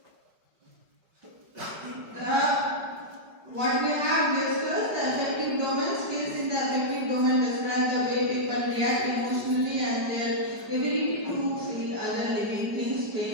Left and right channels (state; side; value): late; left; 5.0 ms